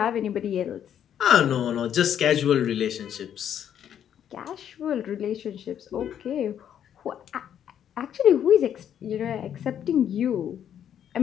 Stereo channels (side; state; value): right; quieter; 9.5 dB